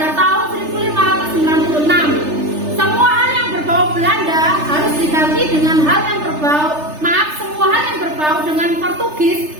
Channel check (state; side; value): late; left; 3.3 ms